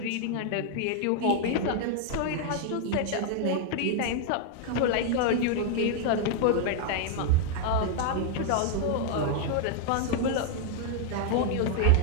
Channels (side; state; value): both; different; correlation 0.00